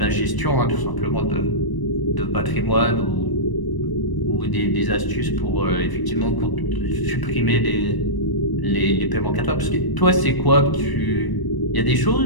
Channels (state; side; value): late; right; 1.0 ms